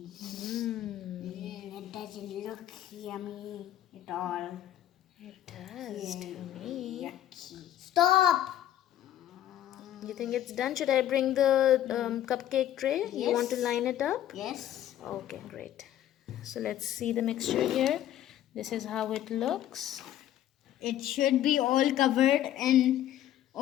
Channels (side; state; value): right; quieter; 12.0 dB